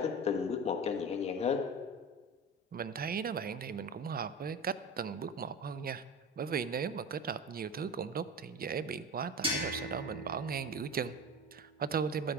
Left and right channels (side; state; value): both; normal; correlation 0.30